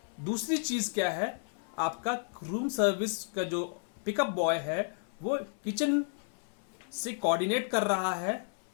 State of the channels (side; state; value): right; silent; 56 dB below the other